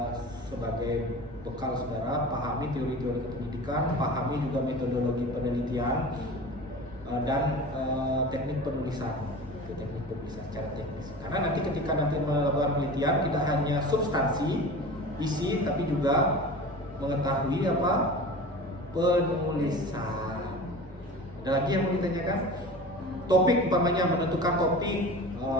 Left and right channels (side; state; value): both; normal; correlation 0.36